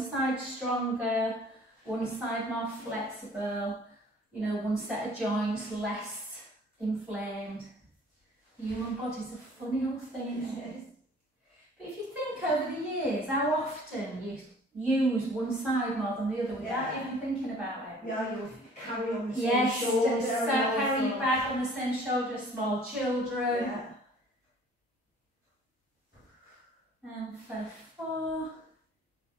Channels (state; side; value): normal; both; correlation 0.52